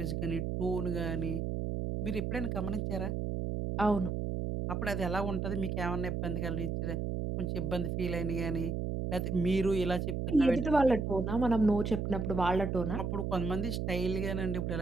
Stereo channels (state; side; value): noise; right; hum, 1 dB below the sound